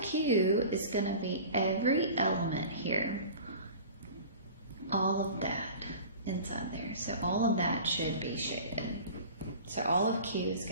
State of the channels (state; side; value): inverted; both; correlation -0.40